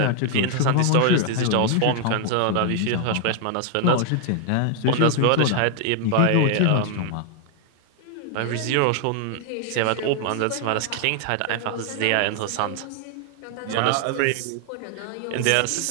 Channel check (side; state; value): both; different; correlation 0.00